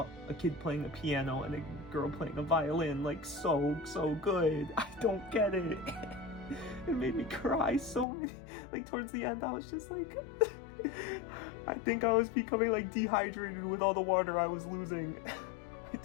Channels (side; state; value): right; drops out; at 8.1 s